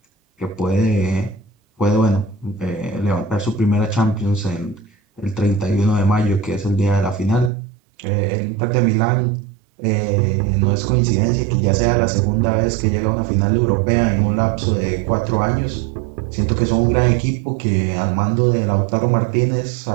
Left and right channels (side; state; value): left; drops out; at 7.5 s